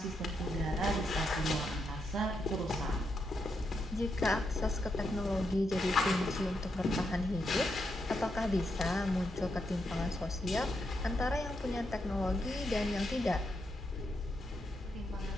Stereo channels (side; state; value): both; normal; correlation 0.82